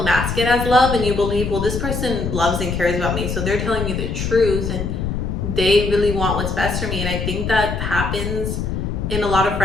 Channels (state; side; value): noise; left; rumble, 3 dB below the sound